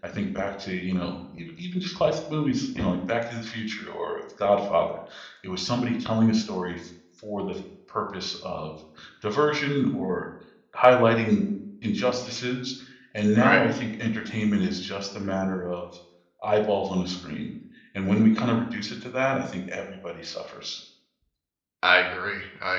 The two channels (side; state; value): both; identical; correlation 1.00